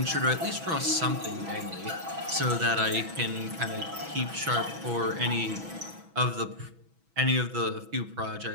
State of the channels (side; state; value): left; late; 6.1 ms